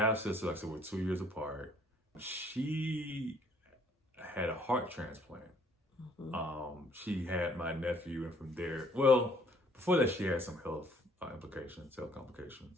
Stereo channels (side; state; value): both; normal; correlation 0.61